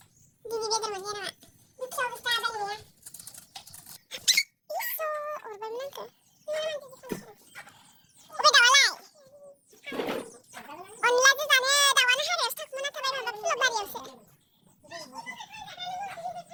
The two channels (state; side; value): identical; both; correlation 1.00